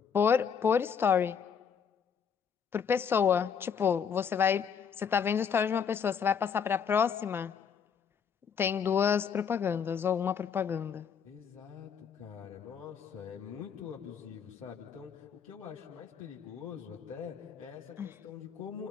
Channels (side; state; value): right; quieter; 7.0 dB